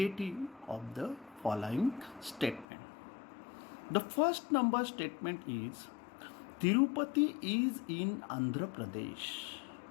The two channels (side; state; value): right; drops out; at 2.7 s